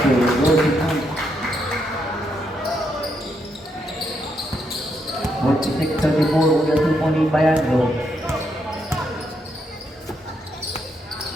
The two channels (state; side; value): normal; both; correlation 0.78